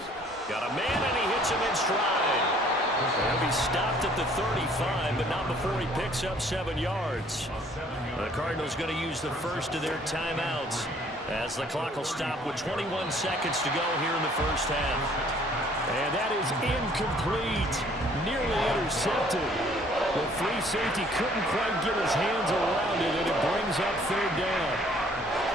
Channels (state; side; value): normal; both; correlation 0.59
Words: Got a man, and he hits him in stride. He'll be stopped at the 35, but not before he picks up 7 yards. The Cardinals going to use the first of their timeouts as the clock will stop with 21 seconds to go here in the first half. And that is incomplete. Nearly intercepted. The free safety couldn't quite get his hands around it, and it brings up 3rd down.